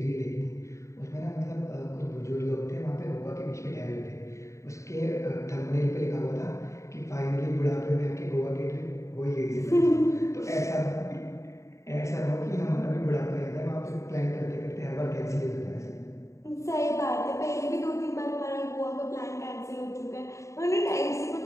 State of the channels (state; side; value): late; right; 0.14 ms